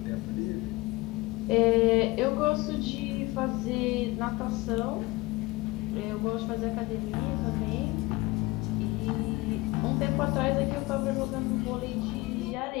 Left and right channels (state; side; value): quieter; right; 21.4 dB